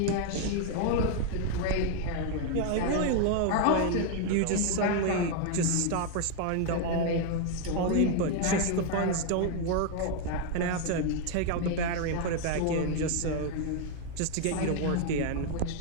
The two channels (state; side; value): different; both; correlation 0.00